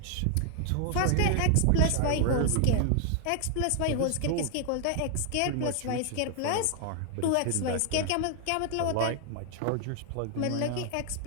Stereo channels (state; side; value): different; both; correlation 0.00